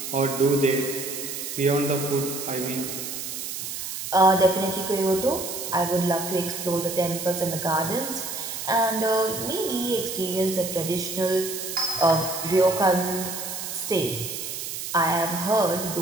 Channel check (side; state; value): right; noise; hiss, 6 dB below the sound